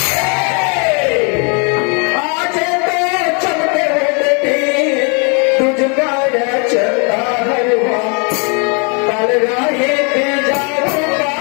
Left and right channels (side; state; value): right; quieter; 35.5 dB